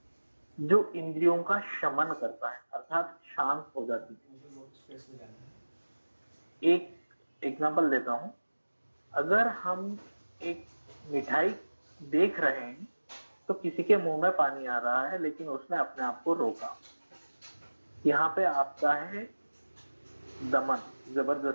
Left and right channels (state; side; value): inverted; both; correlation -1.00